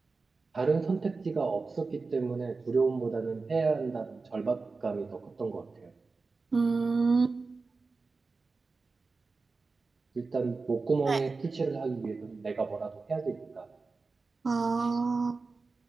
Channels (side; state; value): left; quieter; 4.1 dB